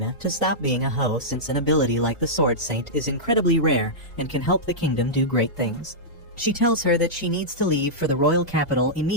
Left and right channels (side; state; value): both; normal; correlation -0.11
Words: to stop being a hoe, since an ability like the Sword Saint is incredibly rare and can help the kingdom do great things. She tells her that she needs to leave for the royal capital